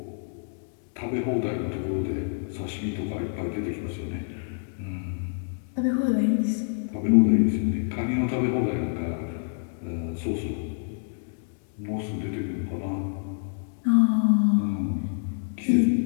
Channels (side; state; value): right; silent; digital silence